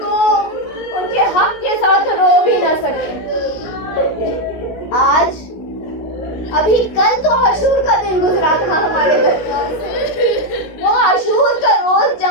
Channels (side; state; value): right; late; 16 ms